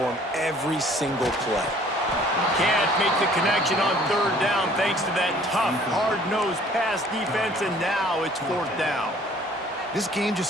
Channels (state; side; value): normal; both; correlation 0.55